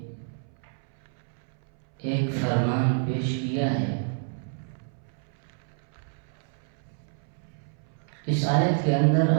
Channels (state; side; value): silent; left; 59 dB below the other